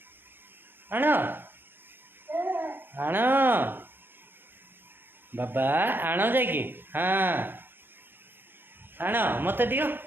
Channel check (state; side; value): late; left; 0.10 ms